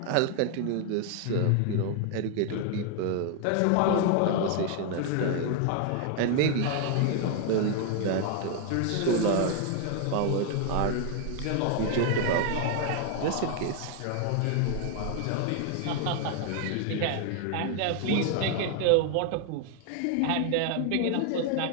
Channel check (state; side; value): different; both; correlation 0.00